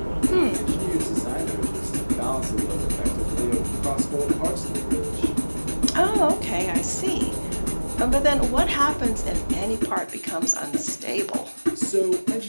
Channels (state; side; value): inverted; both; correlation -1.00